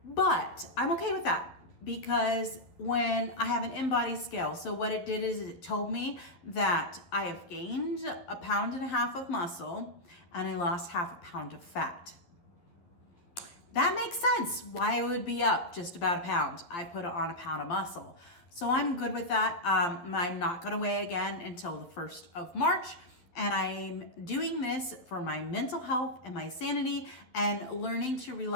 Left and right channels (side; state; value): right; late; 12 ms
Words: But I'm okay with that because when I have an in-body scale, so what it did is it told me that I have gained 1.5 pounds of muscle and I lost 0.5 pound of fat. That makes sense why it would be up just about 1 pound. I put on 1 pound of muscle. So I'm good with that. I'm not gonna weigh again until the 1st of March. And I'm doing this for my mental health and my sanity, and learning to